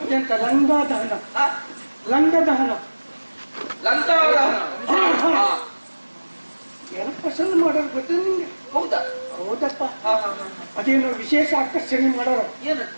ಎಂತ ಲಂಗದಹನ, ಲಂಗದಹನ ಏನು ಪಸಂದ್ ಮಾಡೋರು ಗೊತ್ತ ನಿಂಗೆ? ಹೌದಾ? ಹೌದಪ್ಪ. ಅದೇನು ವಿಶೇಷ ಆಕರ್ಷಣೆ ಮಾಡೋರು.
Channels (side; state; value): both; inverted; correlation -1.00